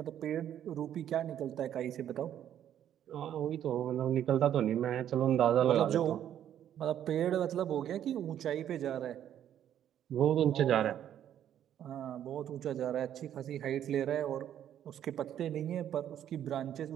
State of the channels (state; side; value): quieter; left; 10.5 dB